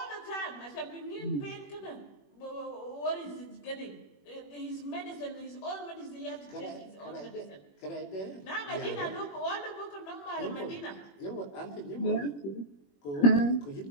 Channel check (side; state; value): right; late; 21 ms